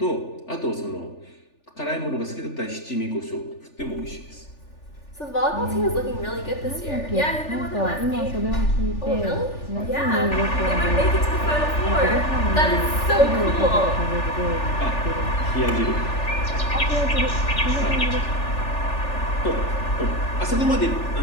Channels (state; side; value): late; right; 3.4 ms